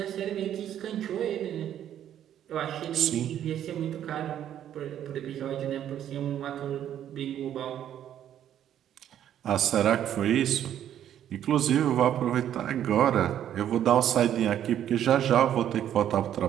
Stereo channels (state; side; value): quieter; left; 10.6 dB